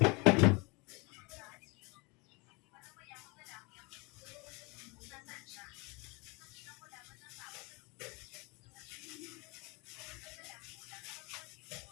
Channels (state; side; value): quieter; right; 27.7 dB